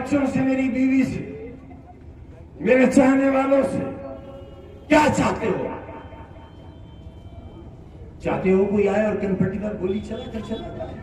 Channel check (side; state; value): both; identical; correlation 1.00